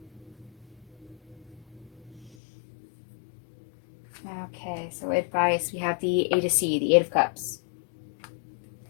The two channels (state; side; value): drops out; right; at 2.4 s